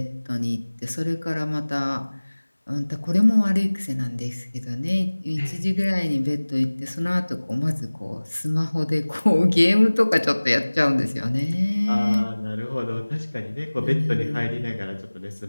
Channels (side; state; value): both; inverted; correlation -1.00